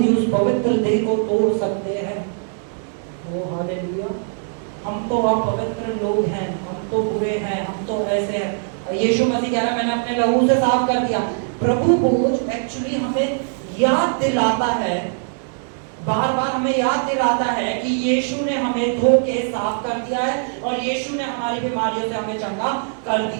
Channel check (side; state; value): left; silent; digital silence